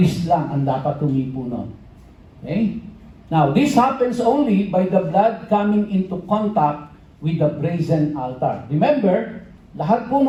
lang ang dapat humipo nun. Okay? Now, this happens only by the blood coming into contact with the brazen altar. Remember, lahat po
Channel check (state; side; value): identical; both; correlation 1.00